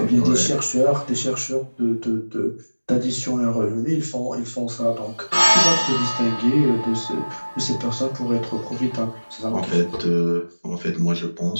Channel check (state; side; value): inverted; both; correlation -1.00